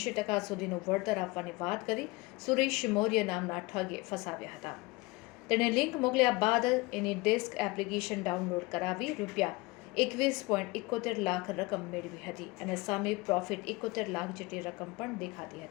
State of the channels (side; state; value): right; quieter; 23.1 dB